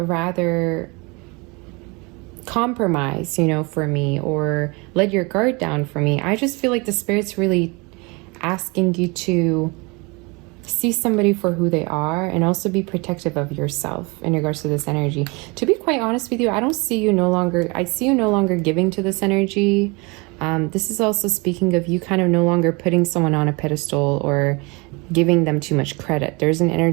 compromise, you know, for me, or let your guard down for me. I just feel like the Spirit's really asking you to see somebody for who they are and also be protective of yourself in regards to this energy. To be quite honest with you, I see you no longer giving to this energy. This is also speaking of you kind of no longer putting someone on a pedestal or giving them too much credit. There's an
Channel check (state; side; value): quieter; left; 28.0 dB